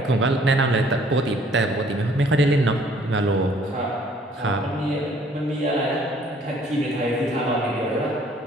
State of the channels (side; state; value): both; normal; correlation 0.59